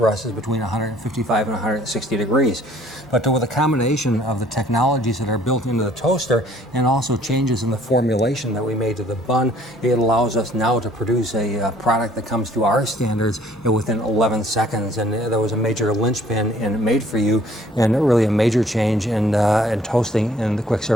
us is between 155 and 160 degrees. But with a combination of the technologies that are built into the toaster and also changes in the formulation that we made to the bun, it allows us now to produce a product that comes to our standards within 11 seconds. And that was a major linchpin in Made For You and really a major change in toasting in the quick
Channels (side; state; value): both; normal; correlation 0.57